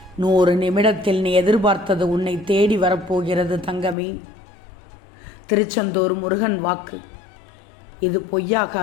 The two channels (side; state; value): right; drops out; at 4.0 s